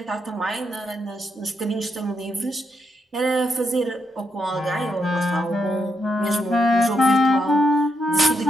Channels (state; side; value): normal; both; correlation 0.81